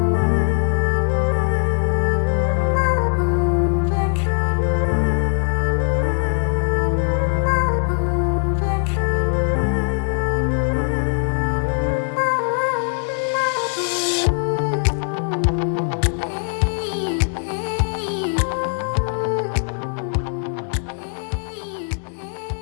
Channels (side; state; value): right; silent; digital silence